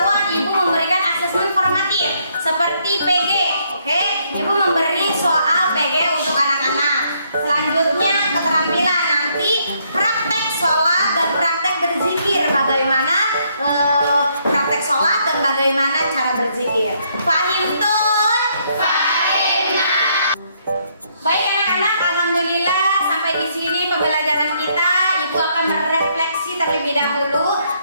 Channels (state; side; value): inverted; both; correlation -0.71